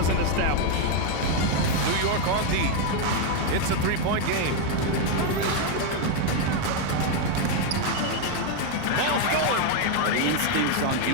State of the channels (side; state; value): both; different; correlation 0.01